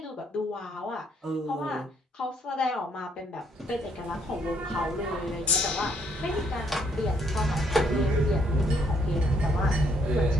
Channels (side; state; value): both; normal; correlation 0.68